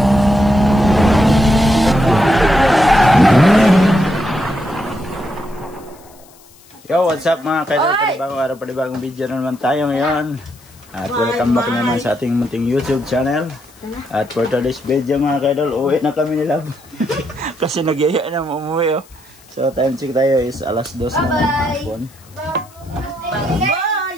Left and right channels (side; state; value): left; noise; hiss, 27 dB below the sound